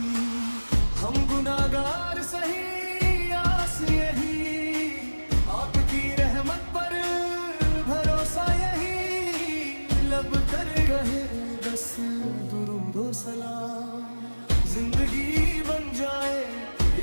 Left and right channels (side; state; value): both; inverted; correlation -1.00